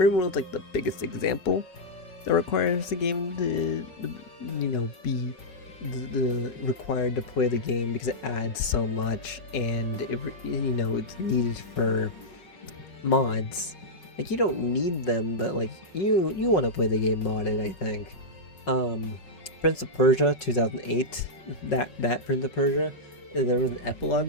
like the biggest example that requires the game to be the required to play the game because it adds so much and it's needed for mods. Like, you don't need them, but like you want to play the game modded, I think. Prince of Persia 2008, that Prince of Persia, there was an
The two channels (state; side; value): late; right; 5.4 ms